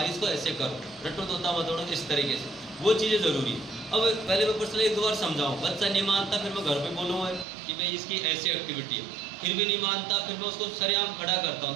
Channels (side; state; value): left; drops out; at 7.5 s